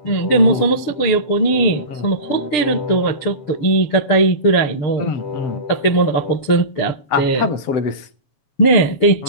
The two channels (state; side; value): late; right; 6.7 ms